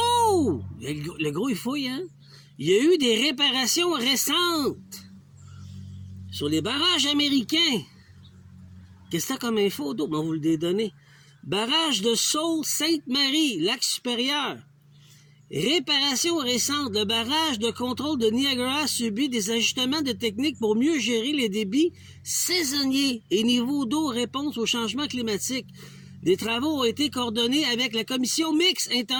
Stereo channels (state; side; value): identical; both; correlation 1.00